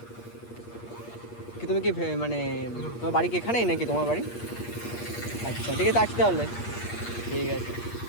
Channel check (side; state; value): right; late; 8.5 ms